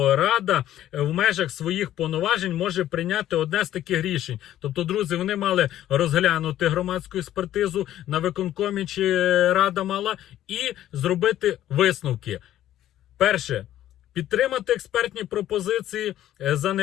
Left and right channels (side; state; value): right; quieter; 12.6 dB